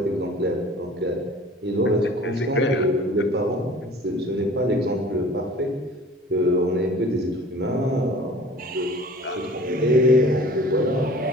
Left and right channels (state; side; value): normal; both; correlation 0.46